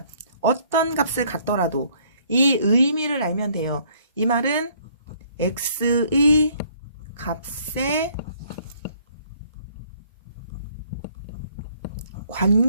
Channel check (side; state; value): both; inverted; correlation -0.62